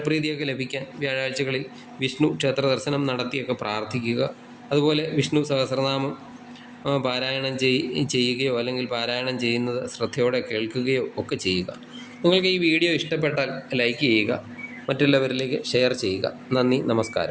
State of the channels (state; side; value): identical; both; correlation 1.00